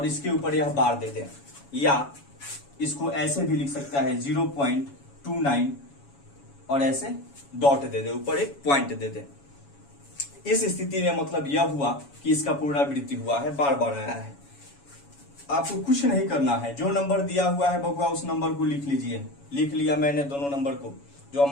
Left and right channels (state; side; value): late; right; 7.1 ms